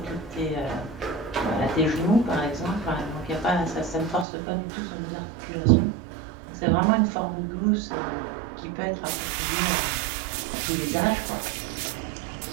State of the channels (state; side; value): drops out; left; at 4.2 s